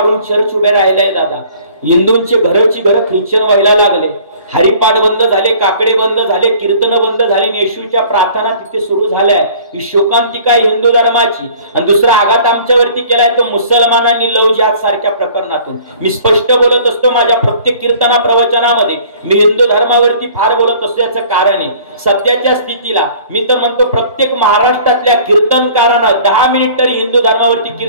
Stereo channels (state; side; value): inverted; both; correlation -0.51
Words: चर्च उभे राहिलाय दादा. हिंदूंचे घरची घरं ख्रिश्चन व्हायला लागले. हरिपाठ बंद झाले, काकडे बंद झाले, कीर्तन बंद झाले, येशूच्या प्रार्थना तिथे सुरू झाल्या. ही शोकांतिका हिंदू धर्माची. आणि दुसरा आघात आमच्यावरती केलाय तो मुसलमानांनी लव जिहाद सारख्या प्रकरणातून. मी स्पष्ट बोलत असतो माझ्या प्रत्येक कीर्तना प्रवचनामध्ये. मी हिंदू धर्मावरती फार बोलत असतो. याचं कारण आहे सध्याच्या स्थितीला मी तर म्हणतो प्रत्येक महाराष्ट्रातल्या कीर्तनकारांना 10 मिनिट तरी हिंदू धर्मावरती